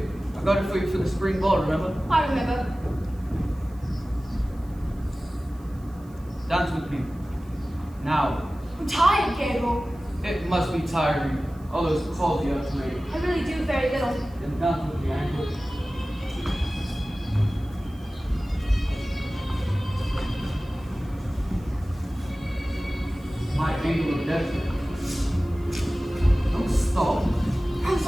I got it for you for the spring ball, remember? I remember. Dance with me. Now. I'm tired, Gabriel. It must be tiring. All those calls you have to make. I really do very little. Then dance with me, ankle. My angle of death. Don't stop. I'm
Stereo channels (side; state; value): right; noise; hiss, 29 dB below the sound